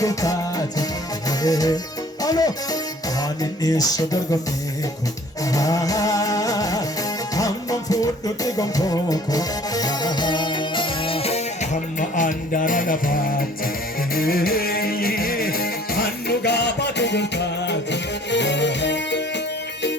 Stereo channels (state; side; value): normal; both; correlation 0.53